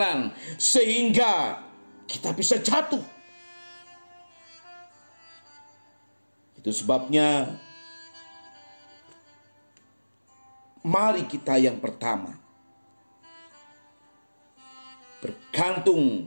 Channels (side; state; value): both; inverted; correlation -1.00